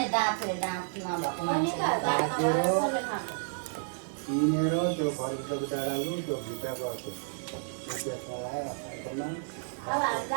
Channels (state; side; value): silent; left; digital silence